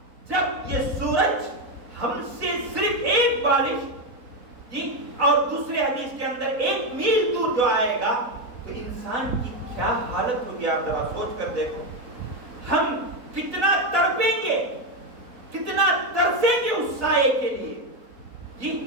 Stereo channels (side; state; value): left; late; 4.1 ms